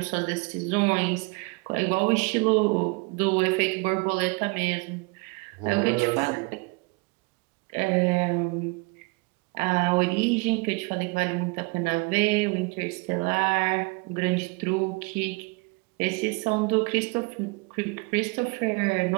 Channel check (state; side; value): quieter; left; 29.5 dB